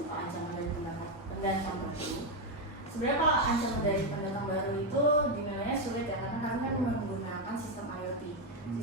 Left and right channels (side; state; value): both; normal; correlation 0.06